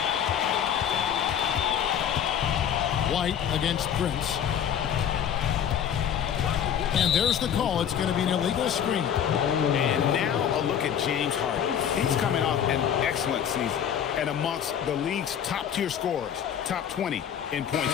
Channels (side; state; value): right; quieter; 8.9 dB